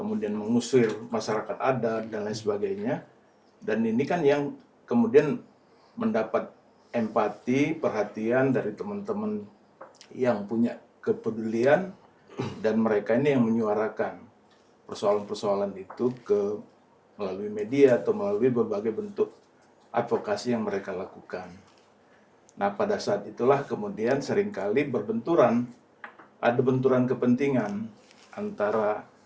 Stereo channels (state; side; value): identical; both; correlation 1.00